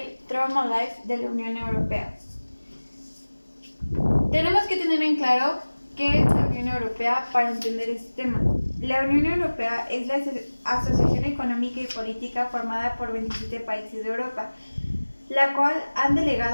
Trauma Life de la Unión Europea. Tenemos que tener en claro qué es la Unión Europea para entender este tema. La Unión Europea es la asociación económica y política formada por 27 países de Europa, la cual han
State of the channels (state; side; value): inverted; both; correlation -1.00